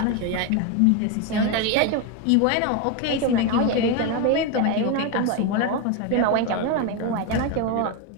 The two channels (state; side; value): different; both; correlation 0.02